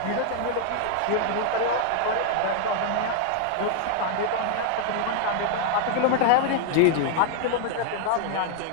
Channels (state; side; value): different; both; correlation 0.00